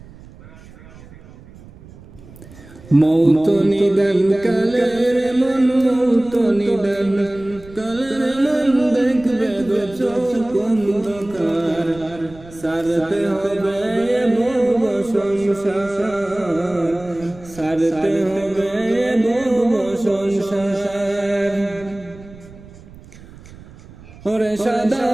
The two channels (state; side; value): noise; right; rumble, 20 dB below the sound